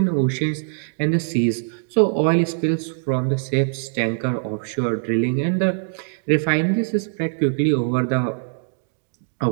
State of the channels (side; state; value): left; silent; digital silence